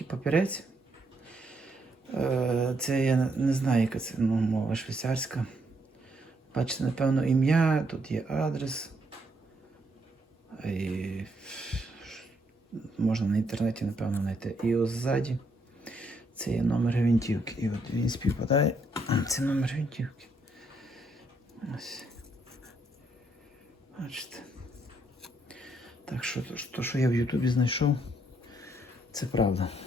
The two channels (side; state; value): both; normal; correlation 0.73